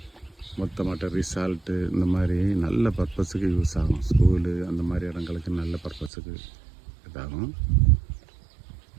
மொத்தமாட்ட ரிசால்ட்டு இந்த மாதிரி நல்ல பர்பஸுக்கு யூஸ் ஆகும். ஸ்கூலு அந்த மாதிரி இடங்களுக்கு நல்ல பர்பஸுக்கு இதாகும்.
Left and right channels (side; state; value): left; drops out; at 6.1 s